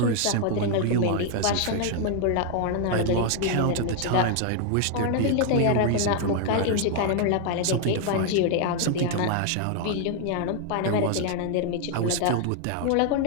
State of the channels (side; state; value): both; different; correlation 0.00